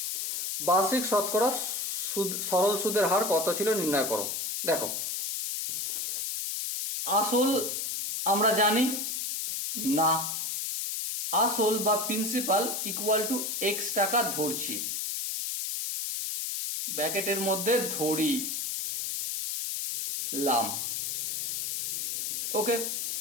বার্ষিক শতকরা সরল সুদের হার কত ছিল নির্ণয় করো। দেখো আসল আমরা জানি না, আসল বা প্রিন্সিপাল ইকুয়াল টু এক্স টাকা ধরছি, ব্র্যাকেটের মধ্যে ধরি লাম। ওকে,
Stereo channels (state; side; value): noise; left; hiss, 2 dB below the sound